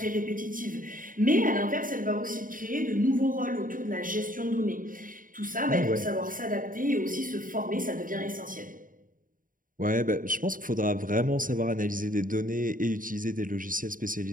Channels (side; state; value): left; late; 0.39 ms